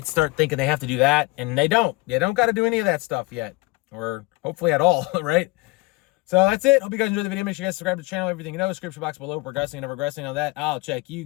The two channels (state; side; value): quieter; right; 22.5 dB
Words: start thinking they have to do that and they don't. You don't got to do any of that stuff yet, or hopefully at all, right? So that's it. Hope you guys enjoyed the video. Make sure you guys subscribe to the channel. Everything description box below. Progressing and never regressing on that. I'll check you